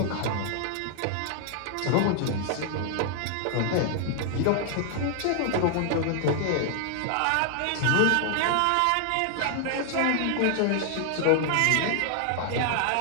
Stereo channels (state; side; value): different; both; correlation 0.00